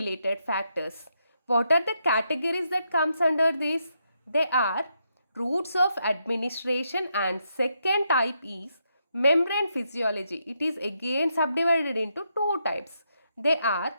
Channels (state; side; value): inverted; both; correlation -0.80